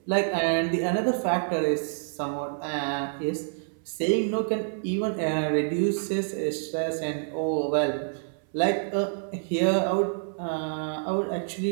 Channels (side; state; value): left; silent; 60 dB below the other